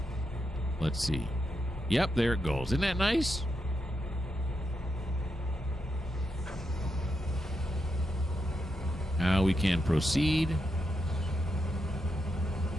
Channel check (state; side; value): normal; both; correlation 0.84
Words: Let's see. Yep, there it goes. Isn't that nice? Now we can proceed.